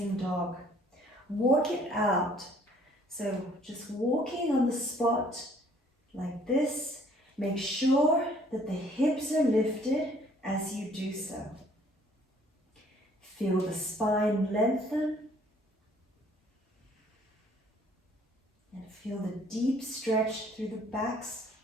dog. Walk it out. So just walking on the spot like this. Make sure that the hips are lifted as you do so. Feel the spine lengthen. And feel the deep stretch through the backs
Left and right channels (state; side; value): normal; both; correlation 0.59